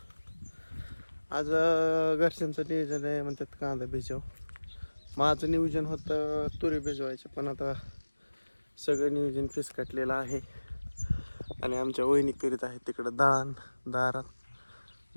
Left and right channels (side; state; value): both; inverted; correlation -1.00